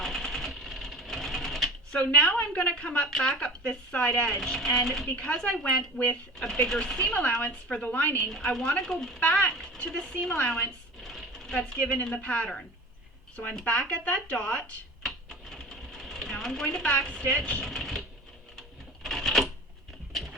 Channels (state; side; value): normal; both; correlation 0.37